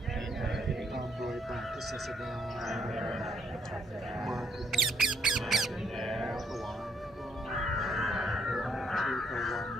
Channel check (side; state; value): both; normal; correlation 0.72